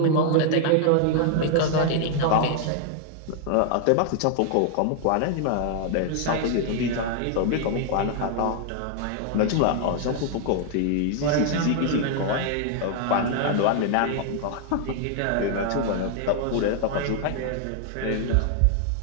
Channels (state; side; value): different; both; correlation 0.00